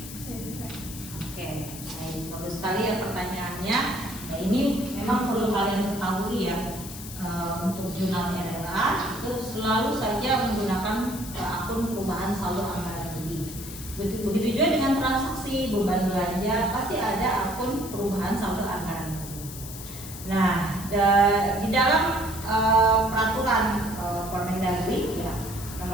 selalu saja menggunakan akun perubahan saldo anggaran lebih. Begitu juga dengan transaksi beban belanja, pasti ada akun perubahan saldo anggaran lebih. Nah, di dalam peraturan Permendagri ya,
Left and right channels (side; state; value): left; noise; hiss, 12 dB below the sound